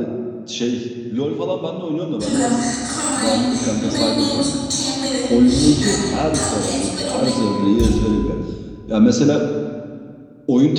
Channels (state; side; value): identical; both; correlation 1.00